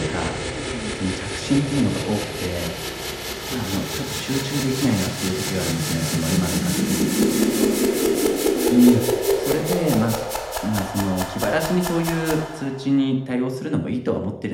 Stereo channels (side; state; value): both; identical; correlation 1.00